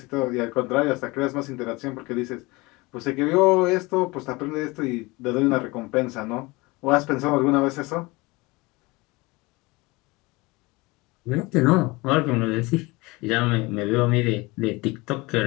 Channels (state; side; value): quieter; right; 23.7 dB